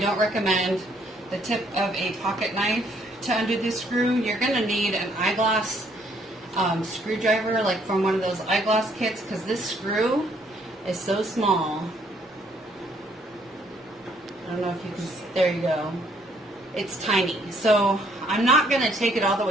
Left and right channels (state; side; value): normal; both; correlation 0.66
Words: recommend, the tip of a pocket knife to undo this screw. You're going to need an eyeglass screwdriver, like from one of those eyeglass kits, because this screw is so small. I don't know if you can, there you go. It's tiny. So I'm not going to take it all the